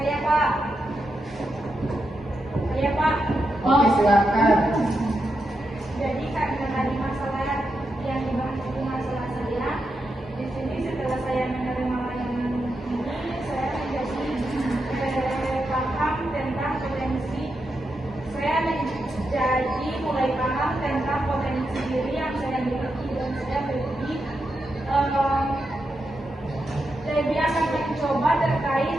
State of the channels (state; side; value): normal; both; correlation 0.86